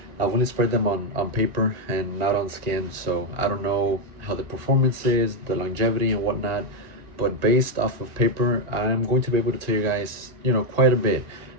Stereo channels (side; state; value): left; late; 1.9 ms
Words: I've only spread them on paper and not on skin, so I don't know how the performance is, the longevity and whatnot, but based off of paper, I'm going to be able to tell you guys, quite a bit